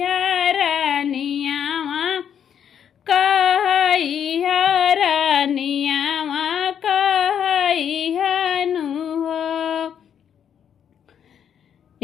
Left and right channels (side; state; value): right; quieter; 8.6 dB